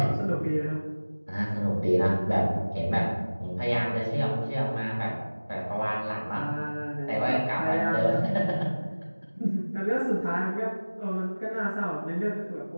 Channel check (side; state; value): both; inverted; correlation -1.00